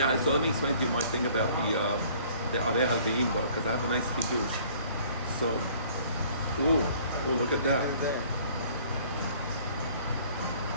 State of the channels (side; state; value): both; inverted; correlation -0.55